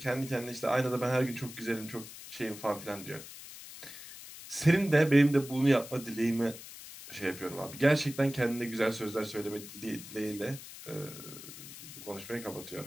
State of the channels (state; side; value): noise; left; hiss, 14 dB below the sound